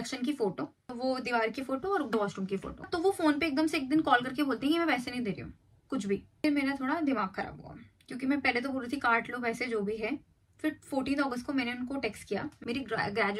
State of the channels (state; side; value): identical; both; correlation 1.00